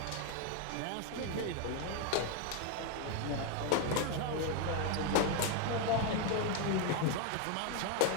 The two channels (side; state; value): both; different; correlation 0.01